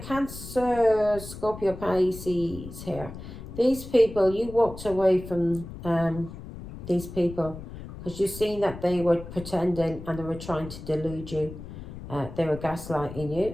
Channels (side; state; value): left; noise; rumble, 12 dB below the sound